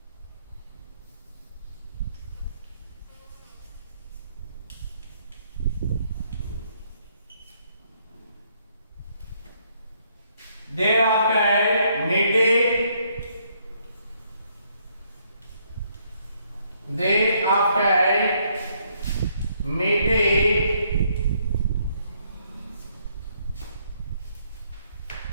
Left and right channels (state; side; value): inverted; both; correlation -0.70